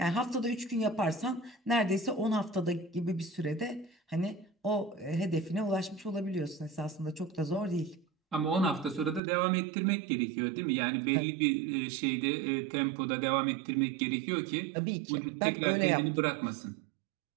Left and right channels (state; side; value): drops out; left; at 9.2 s